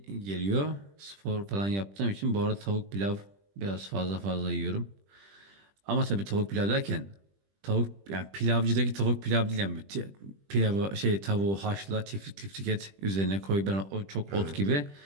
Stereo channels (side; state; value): left; late; 20 ms